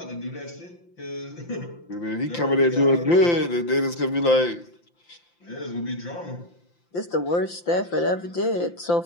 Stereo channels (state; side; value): late; right; 5.8 ms